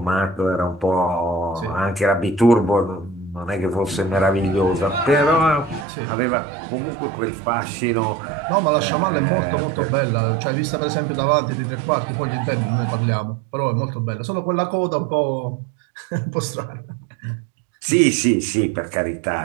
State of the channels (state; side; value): drops out; left; at 5.9 s